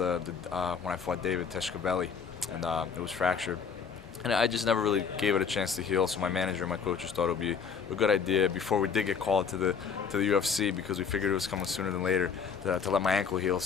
I fought David Teshkabeli, and it was fractured. And I just never really gave it a chance to heal. So my manager and my coaches thought it would be a good idea before we did get called to the UFC, because we figured it was coming sooner than later, to let my ankle heal.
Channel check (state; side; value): quieter; right; 6.3 dB